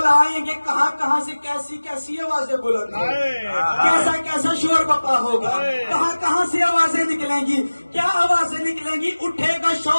آئیں گے کہاں کہاں سے کیسی کیسی آوازیں بلند ہوں گی، کیسا کیسا شور بپا ہوگا، کہاں کہاں سے آوازیں نکلیں گی، کیا آوازیں نکلیں گی؟ اٹھے گا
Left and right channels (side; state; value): both; inverted; correlation -1.00